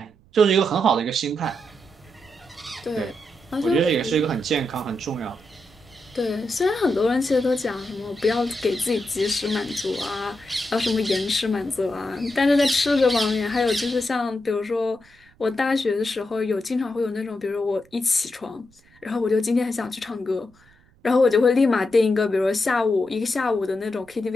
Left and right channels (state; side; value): noise; right; rumble, 30 dB below the sound